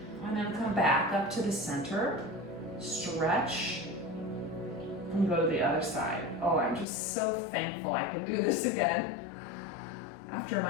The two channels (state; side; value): drops out; right; at 6.9 s